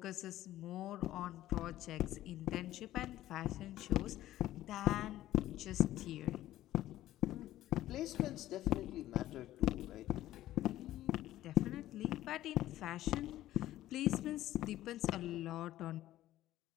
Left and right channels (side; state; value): right; quieter; 14.3 dB